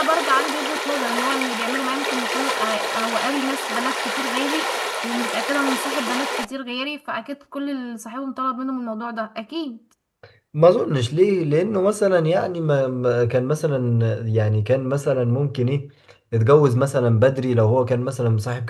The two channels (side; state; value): both; identical; correlation 1.00